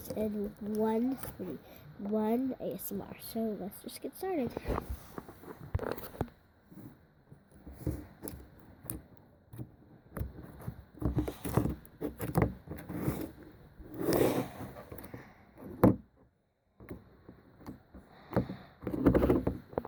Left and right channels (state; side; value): identical; both; correlation 1.00